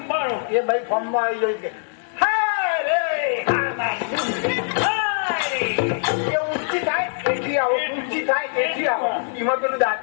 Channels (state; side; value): silent; right; digital silence